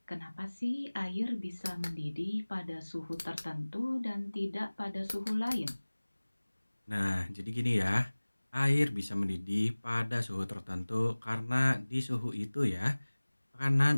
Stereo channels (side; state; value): both; inverted; correlation -1.00